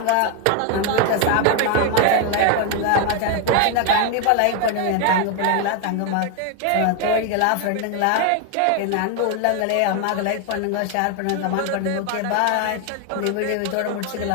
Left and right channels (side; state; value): both; different; correlation 0.01